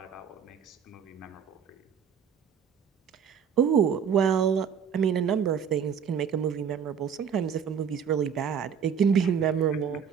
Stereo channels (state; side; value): quieter; left; 7.4 dB